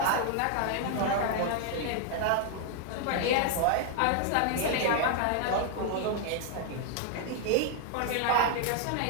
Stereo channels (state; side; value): different; both; correlation 0.00